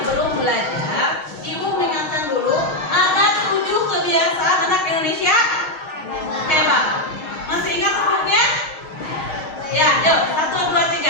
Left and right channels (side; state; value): right; late; 6.4 ms